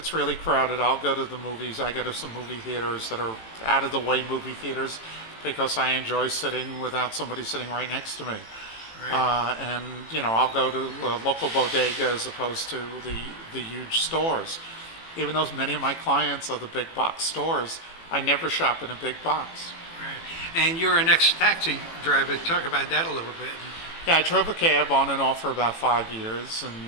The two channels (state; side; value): late; right; 18 ms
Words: really crowded, I'll go to the movies. I go to some movie theaters that are out of the way movie theaters because I enjoy sitting without somebody sitting right next to me. Right. I'll go to a local bodega as opposed to the huge stores. Even though many of my clients are the big box stores, I never shop in a big box. Right. And you're an ex-taxi driver. Talk about that a little bit. Yeah, I drove a cab on and off for about 5 years,